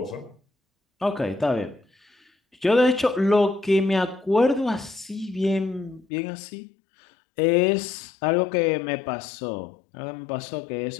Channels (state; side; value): drops out; right; at 6.1 s